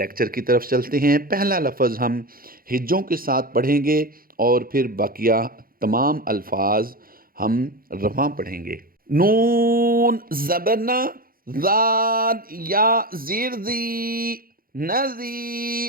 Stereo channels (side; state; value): left; late; 0.42 ms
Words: की तरफ चलते हैं। पहला लफ्ज़ हम हिज्जों के साथ पढ़ेंगे और फिर बाकिया तमाम अल्फाज हम रवां पढ़ेंगे। नून ज़बरना ज़ाद या ज़ीर ज़ी